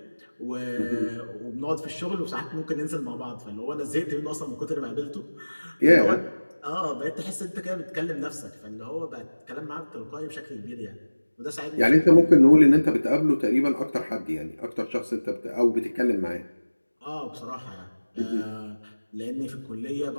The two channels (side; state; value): both; inverted; correlation -1.00